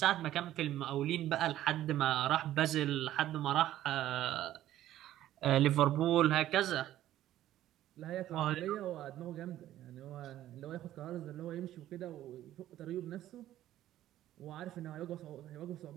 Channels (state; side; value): quieter; left; 13.2 dB